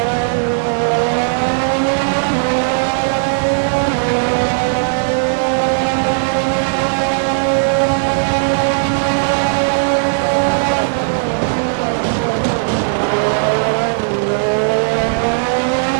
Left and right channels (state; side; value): silent; left; 69 dB below the other